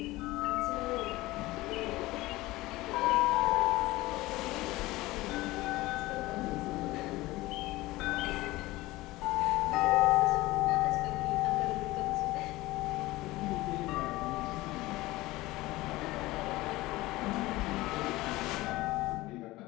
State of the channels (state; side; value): quieter; right; 19.1 dB